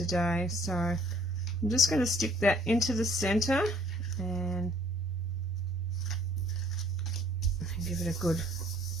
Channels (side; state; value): both; normal; correlation 0.59